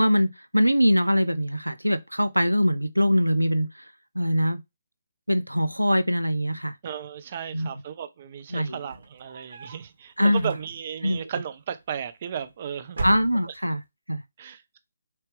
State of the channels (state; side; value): inverted; both; correlation -0.96